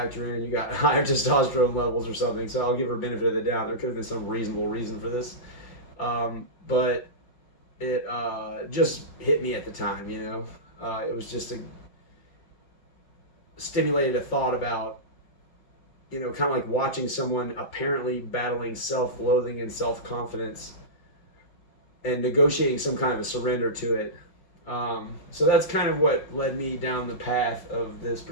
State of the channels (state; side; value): late; right; 5.7 ms